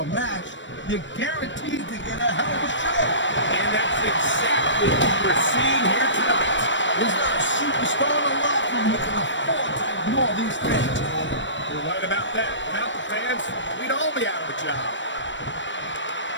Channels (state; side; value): late; right; 0.54 ms